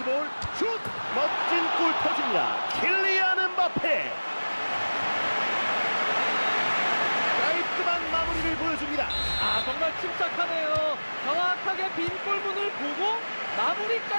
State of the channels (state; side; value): inverted; both; correlation -1.00